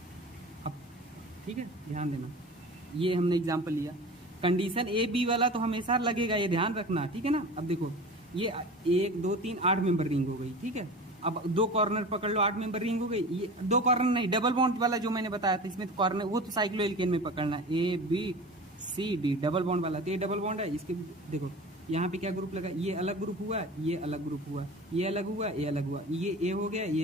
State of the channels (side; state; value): both; normal; correlation 0.36